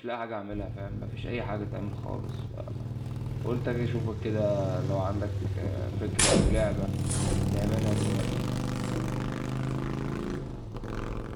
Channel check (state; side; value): identical; both; correlation 1.00